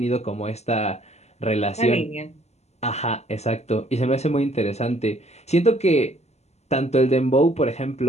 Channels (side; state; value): right; late; 0.32 ms